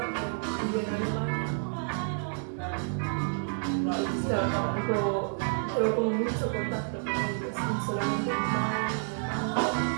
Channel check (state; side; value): silent; left; digital silence